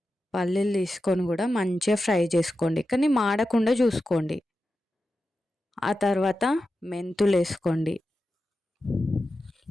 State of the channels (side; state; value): both; normal; correlation 0.91